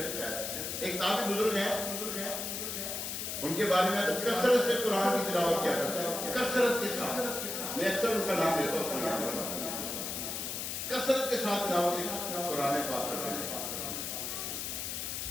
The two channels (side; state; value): left; noise; hiss, 4 dB below the sound